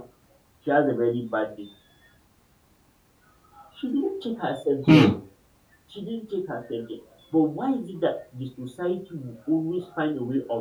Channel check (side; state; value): both; identical; correlation 1.00